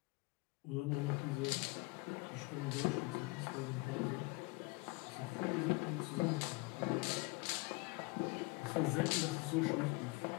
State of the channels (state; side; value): quieter; right; 26.6 dB